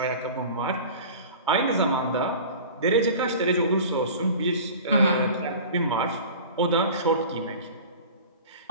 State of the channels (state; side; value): inverted; both; correlation -0.39